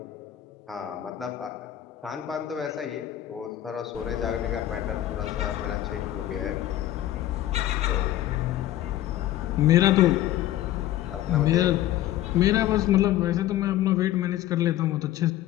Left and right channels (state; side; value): quieter; right; 13.5 dB